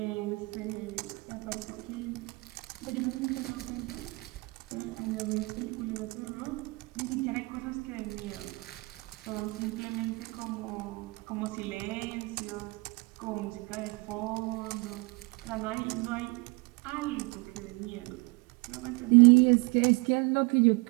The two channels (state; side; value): quieter; left; 26.9 dB